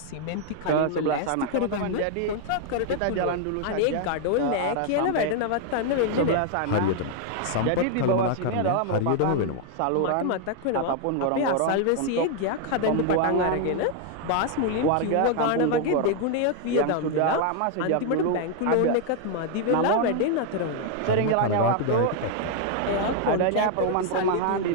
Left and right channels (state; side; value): different; both; correlation 0.00